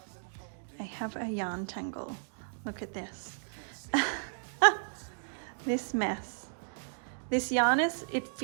I have a yarn tangle. Look at this. This mess. This yarn it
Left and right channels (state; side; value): silent; left; digital silence